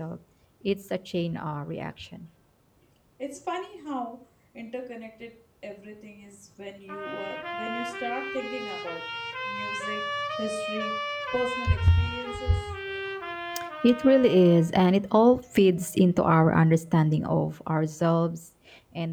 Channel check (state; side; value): identical; both; correlation 1.00